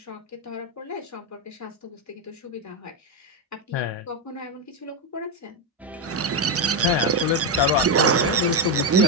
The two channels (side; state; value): both; normal; correlation 0.06